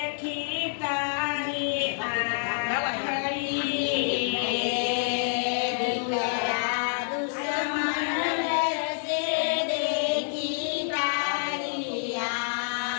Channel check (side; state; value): right; silent; 60 dB below the other